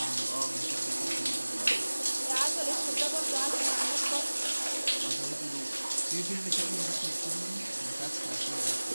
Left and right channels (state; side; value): inverted; both; correlation -1.00